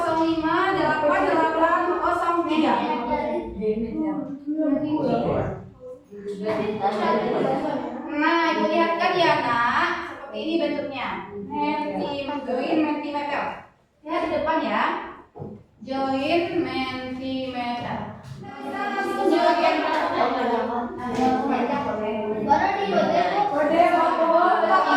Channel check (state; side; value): identical; both; correlation 1.00